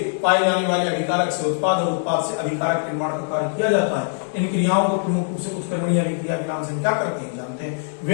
पाए जाने वाले अभिकारक से उत्पाद और उत्पाद से अभिकारक निर्माण का कार्य किया जाता है। इन क्रियाओं को प्रमुख रूप से उत्क्रमणीय अभिक्रिया के नाम से क्या करते हैं, जानते हैं।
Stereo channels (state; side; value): silent; right; 64 dB below the other